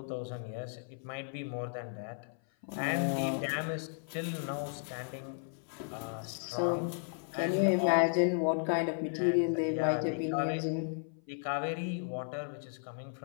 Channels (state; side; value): silent; right; 55 dB below the other